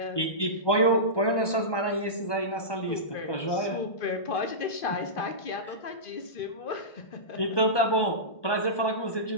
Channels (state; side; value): late; right; 1.2 ms